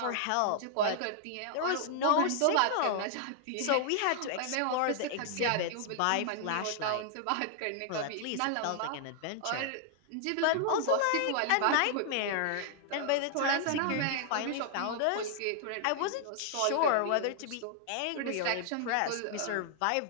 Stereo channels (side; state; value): both; different; correlation -0.01